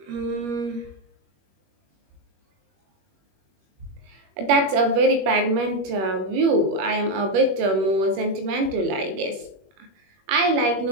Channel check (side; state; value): left; late; 21 ms